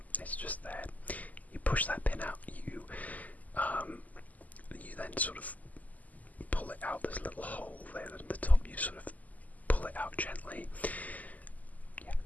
It's just there. You push that pin out, you then sort of pull it out. There's a little hole there at the top. You sort of pull it out gently. Yeah,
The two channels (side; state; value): right; late; 0.078 ms